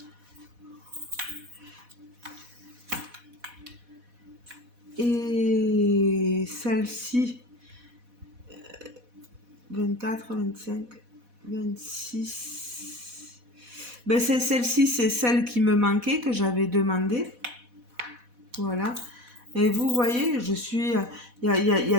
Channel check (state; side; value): late; left; 4.1 ms